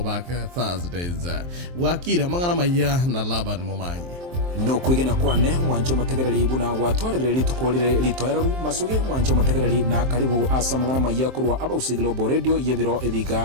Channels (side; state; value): left; late; 23 ms